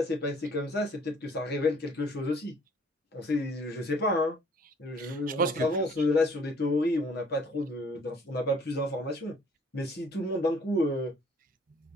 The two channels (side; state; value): both; normal; correlation 0.58